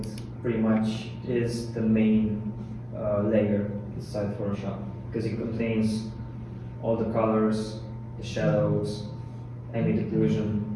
pretty much is the main layer inside Photoshop, because it contains all the colors, the shadows, ambient occlusion,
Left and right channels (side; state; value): both; identical; correlation 1.00